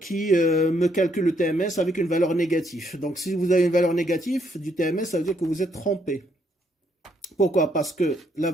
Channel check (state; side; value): normal; both; correlation 0.72